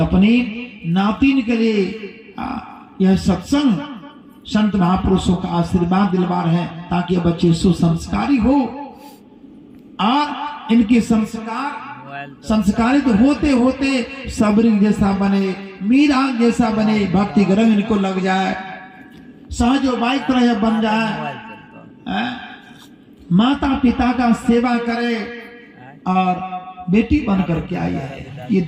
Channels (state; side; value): identical; both; correlation 1.00